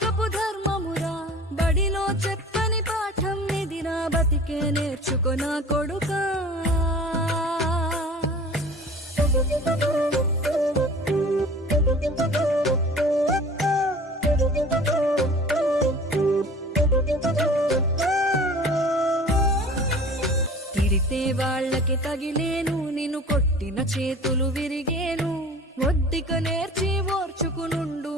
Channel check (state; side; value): normal; both; correlation 0.43